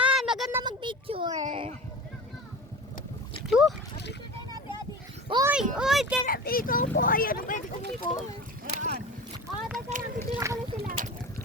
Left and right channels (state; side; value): normal; both; correlation 0.32